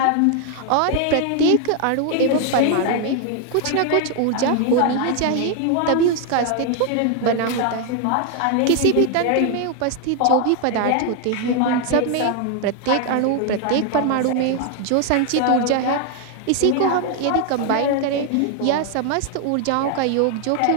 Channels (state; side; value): different; both; correlation 0.01